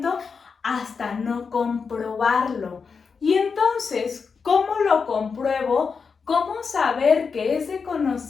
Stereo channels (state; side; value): quieter; right; 5.4 dB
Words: hasta no comprobarlo. Y entonces, ¿cómo lo compruebo? ¿Cómo saber que ese